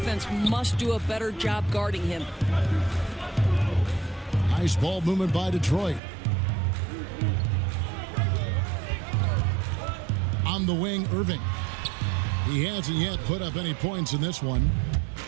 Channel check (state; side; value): drops out; left; at 6.0 s